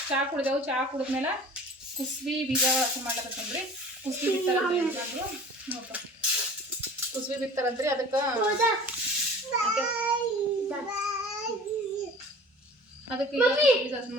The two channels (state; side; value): normal; both; correlation 0.44